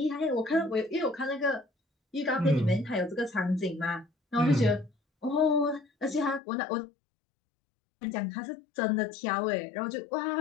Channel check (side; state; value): right; drops out; at 6.4 s